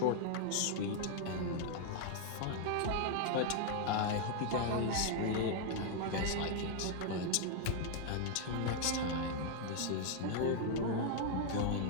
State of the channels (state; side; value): different; both; correlation 0.00